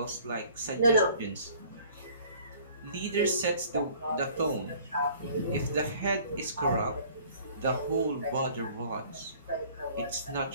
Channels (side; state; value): both; inverted; correlation -0.53